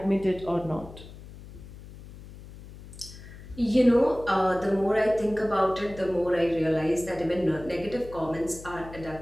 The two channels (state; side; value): noise; left; hum, 16 dB below the sound